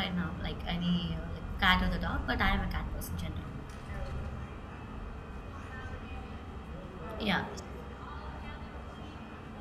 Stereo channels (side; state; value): both; identical; correlation 1.00